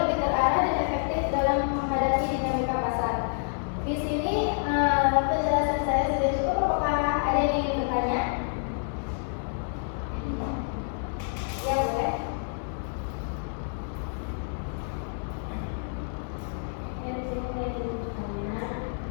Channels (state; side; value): silent; right; digital silence